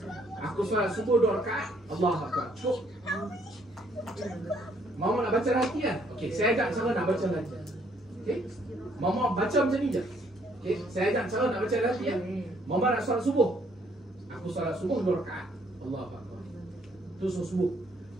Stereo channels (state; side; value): normal; both; correlation 0.66